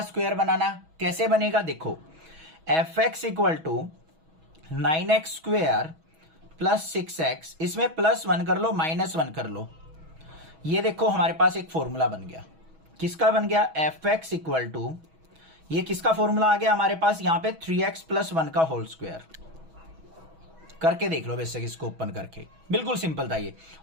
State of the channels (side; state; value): left; late; 6.2 ms